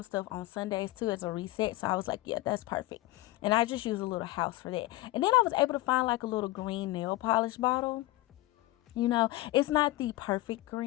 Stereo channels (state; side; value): quieter; right; 18.5 dB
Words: stuff on Sundays too as a reset. So I was like, yeah, that's perfect. And I just use a little house for that. And then I was able to find like a little green nail polish bottle. It's not the perfect